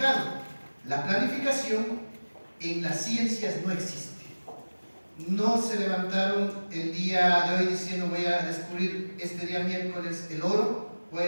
La planificación en las ciencias no existe. No se levantaron el día de hoy diciendo voy a descubrir este día miércoles el oro, voy a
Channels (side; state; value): both; inverted; correlation -1.00